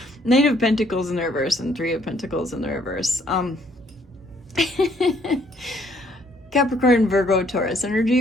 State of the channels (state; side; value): normal; both; correlation 0.65